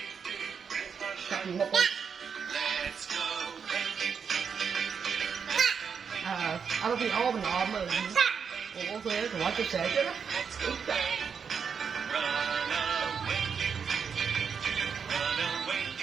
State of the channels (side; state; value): left; quieter; 6.5 dB